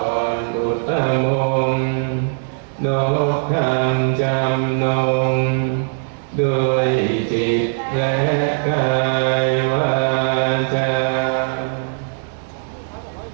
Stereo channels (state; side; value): silent; left; digital silence